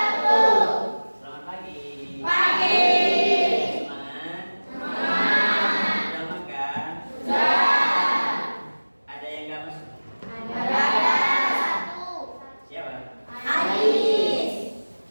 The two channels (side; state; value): both; inverted; correlation -1.00